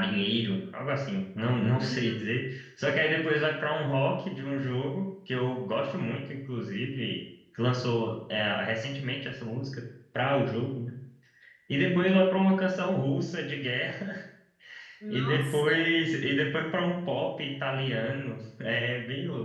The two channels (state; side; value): identical; both; correlation 1.00